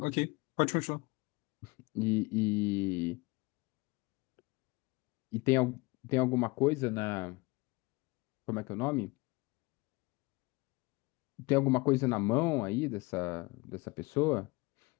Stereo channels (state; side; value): quieter; right; 24.6 dB